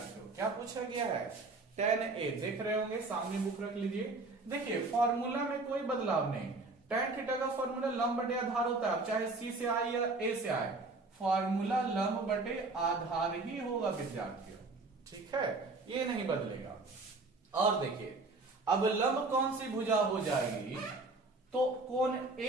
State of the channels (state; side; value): quieter; left; 3.4 dB